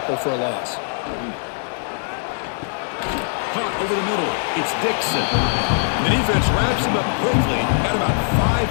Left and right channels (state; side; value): silent; right; digital silence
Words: for a loss. Caught over the middle. It's Dixon. The defense wraps him up quickly. Got about